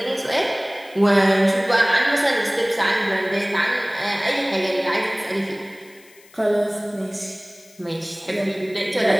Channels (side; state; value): left; noise; hiss, 26 dB below the sound